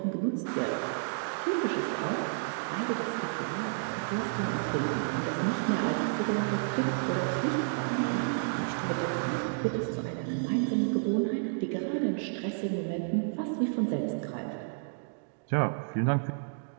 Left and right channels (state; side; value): silent; left; digital silence